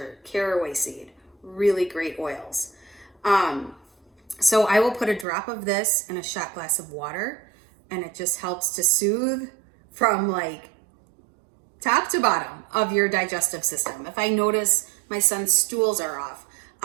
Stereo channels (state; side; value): drops out; left; at 5.2 s